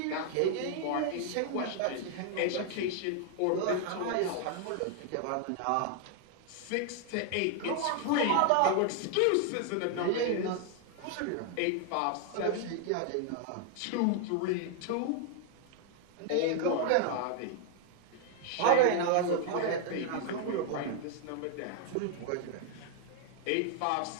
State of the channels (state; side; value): different; both; correlation 0.00